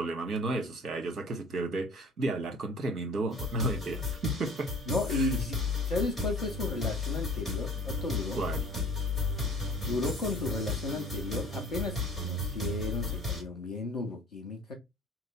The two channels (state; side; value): normal; both; correlation 0.46